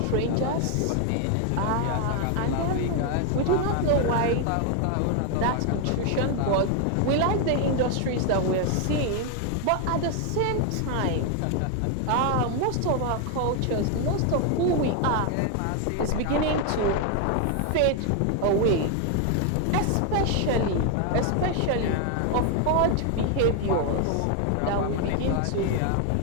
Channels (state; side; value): different; both; correlation 0.01